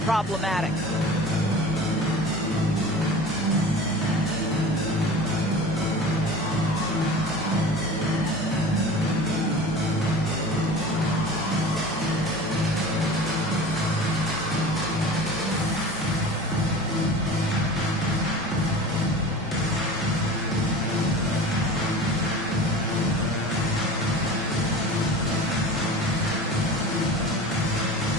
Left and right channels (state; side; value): normal; both; correlation 0.37